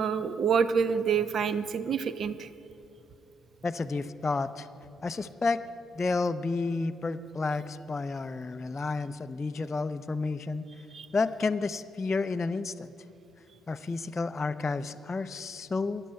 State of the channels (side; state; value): both; normal; correlation 0.80